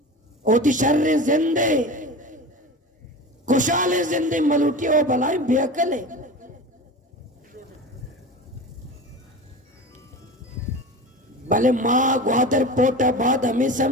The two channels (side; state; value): both; normal; correlation 0.31